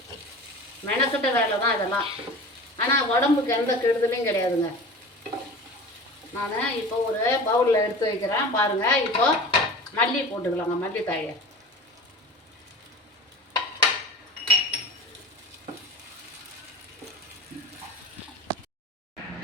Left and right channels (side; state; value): both; normal; correlation 0.36